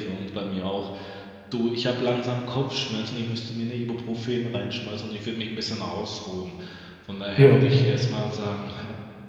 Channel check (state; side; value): identical; both; correlation 1.00